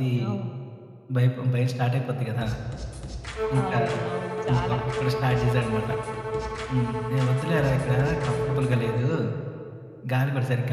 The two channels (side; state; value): both; identical; correlation 1.00